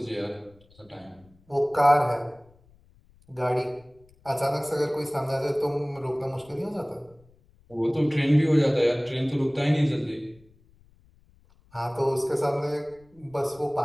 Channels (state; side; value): noise; left; rumble, 30 dB below the sound